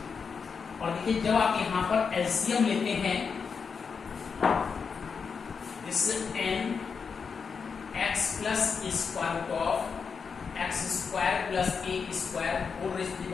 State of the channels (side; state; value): right; quieter; 5.7 dB